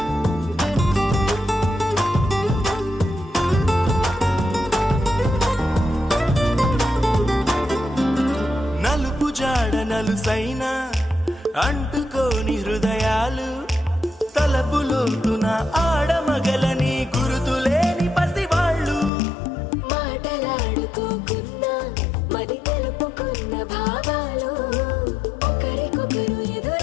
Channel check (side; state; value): right; drops out; at 19.1 s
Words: నలుసైనా అంటుకోని హృదయాలు తలపులోతున ఆడమగలని గురుతులేని పసివాళ్ళు మాటలాడుకోకున్నా మరి తెలుపుకున్న భావాలు ఒకరికొకరు